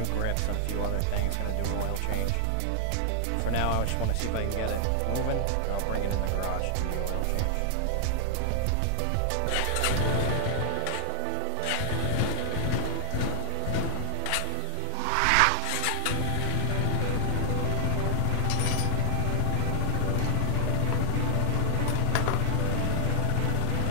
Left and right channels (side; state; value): both; different; correlation 0.00